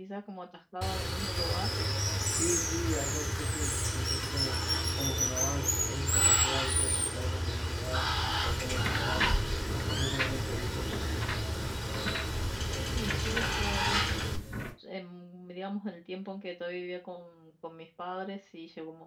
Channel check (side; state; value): both; identical; correlation 1.00